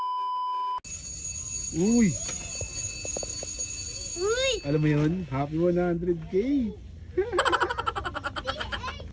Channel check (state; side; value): identical; both; correlation 1.00